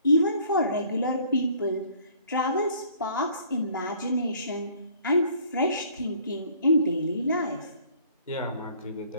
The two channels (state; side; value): inverted; both; correlation -0.57